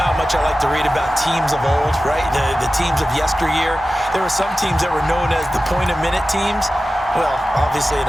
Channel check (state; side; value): normal; both; correlation 0.95